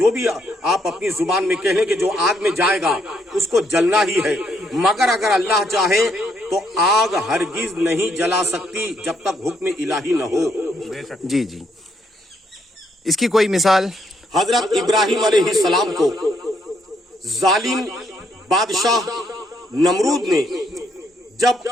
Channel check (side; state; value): both; normal; correlation 0.73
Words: بھی آپ اپنی زبان میں کہہ لیں کہ جو آگ میں جائے گا اس کو جلنا ہی ہے، مگر اگر اللہ چاہے تو آگ ہرگز نہیں جلا سکتی جب تک حکم الہی نہ ہو۔ جی جی، اس کی کوئی مثال؟ حضرت ابراہیم علیہ السلام کو ظالم بادشاہ نمرود نے جب